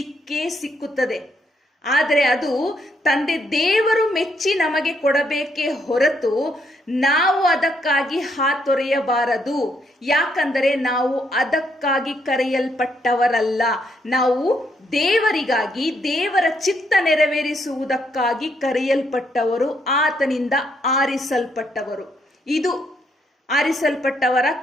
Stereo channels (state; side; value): normal; both; correlation 0.74